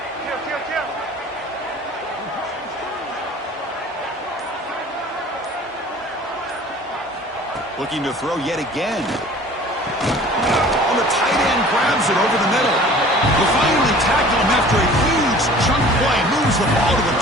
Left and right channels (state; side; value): normal; both; correlation 0.47